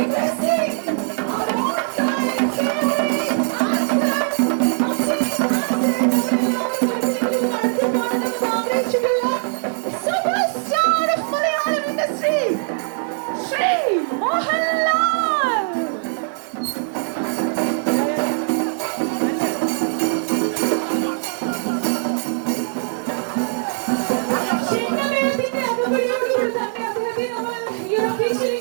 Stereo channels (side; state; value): left; silent; digital silence